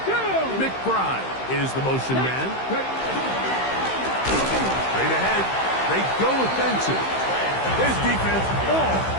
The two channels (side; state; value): right; late; 15 ms